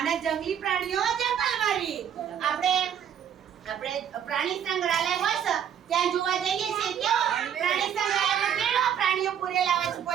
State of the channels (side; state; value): left; quieter; 9.0 dB